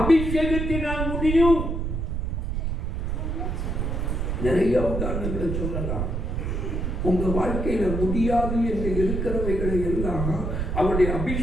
அபிஷேகத்தினால் முடியும். நிறைய உதாரணங்களை சொல்லலாம். உங்க வாழ்க்கையில முடியாது என்று இருக்கிறவைகளை எல்லாம் அவருடைய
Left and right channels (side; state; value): right; noise; rumble, 1 dB below the sound